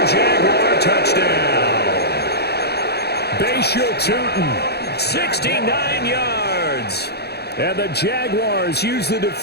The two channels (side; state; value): right; late; 0.47 ms